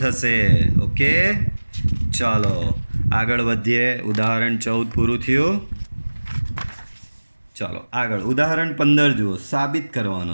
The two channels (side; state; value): both; inverted; correlation -1.00